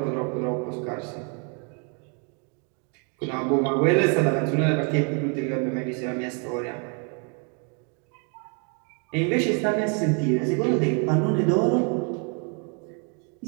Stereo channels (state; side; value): quieter; left; 37.7 dB